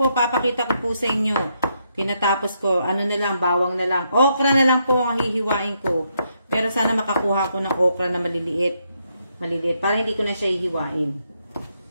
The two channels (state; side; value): inverted; both; correlation -0.78